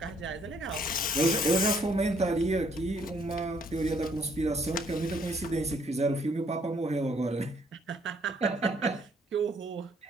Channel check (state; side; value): normal; both; correlation 0.66